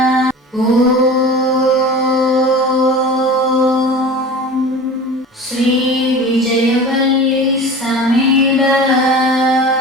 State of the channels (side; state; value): both; normal; correlation 0.36